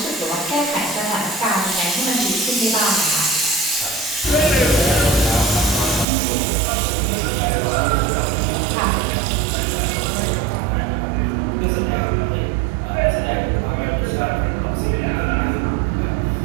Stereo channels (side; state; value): left; drops out; at 6.1 s